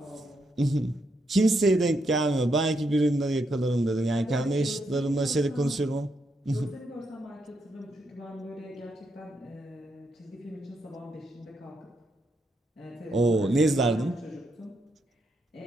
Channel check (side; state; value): both; normal; correlation 0.79